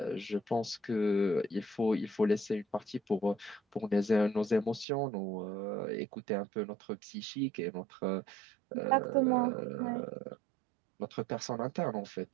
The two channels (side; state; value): left; drops out; at 4.9 s